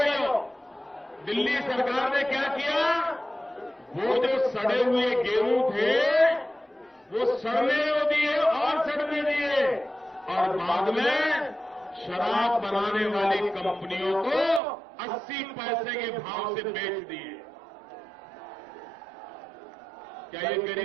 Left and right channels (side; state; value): left; drops out; at 14.6 s